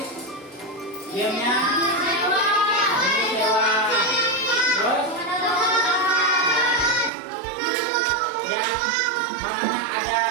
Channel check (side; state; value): left; drops out; at 7.1 s